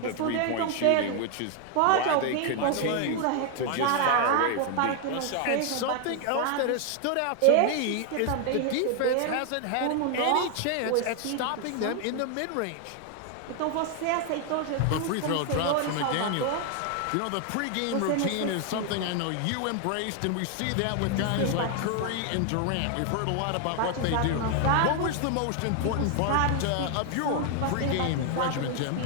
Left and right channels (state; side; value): different; both; correlation 0.00